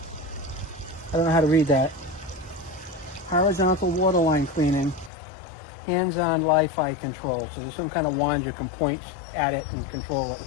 I don't know how to read that. Horizontal waterline cleaning, hands-on Wi-Fi control. So there's some kind of wand you can point at it and control it.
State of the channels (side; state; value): right; drops out; at 5.1 s